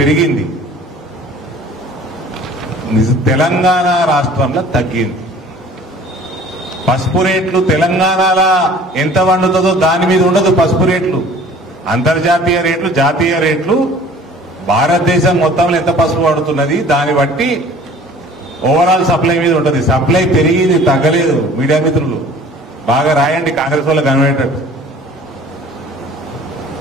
తెలంగాణ రాష్ట్రంలో తగ్గింది. పసుపు రేట్లు తెలంగాణలో ఎంత వండుతుందో దాని మీద ఉండదు. పసుపు రేట్లు అంతర్జాతీయ రేట్లు, జాతీయ రేట్లు, భారతదేశం మొత్తంలో ఎంత పసుపు పడుతున్నది దాన్ని బట్టి ఓవరాల్ సప్లై మీద ఉంటుంది. సప్లై పెరిగింది, తగ్గలేదు. మీడియా మిత్రులు బాగా రాయండి, కాంగ్రెస్ వాళ్ళకి కనబడేటట్టు.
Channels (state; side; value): normal; both; correlation 0.48